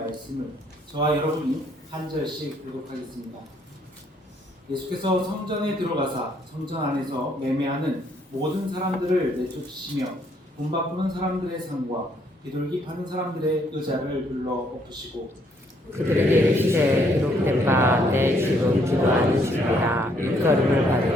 저와 여러분이 한 절씩 교독하겠습니다. 예수께서 성전에 들어가사 성전 안에서 매매하는 모든 사람들을 내쫓으시며 돈 바꾸는 사람들의 상과 비둘기 파는 사람들의 의자를 불러 엎으시고 그들에게 이르시되 기록된 바 내 집은 기도하는 집이라 일거림을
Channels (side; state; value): both; normal; correlation 0.69